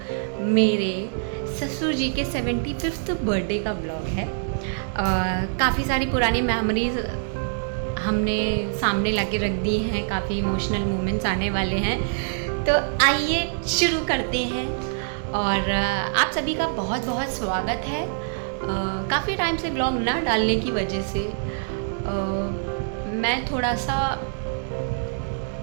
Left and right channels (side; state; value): left; silent; digital silence